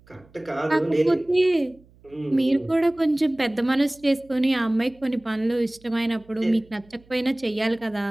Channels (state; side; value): noise; right; hum, 28 dB below the sound